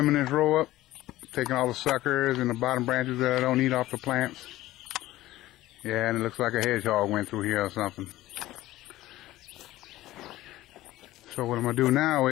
this row up, taking all the suckers and the bottom branches that I don't need off the plants. Yeah, and it looks like a hedgehog went through here or something. So what I'm going to do now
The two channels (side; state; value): right; quieter; 16.2 dB